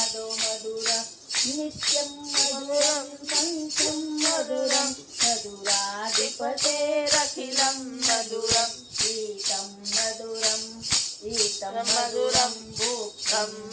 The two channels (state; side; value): identical; both; correlation 1.00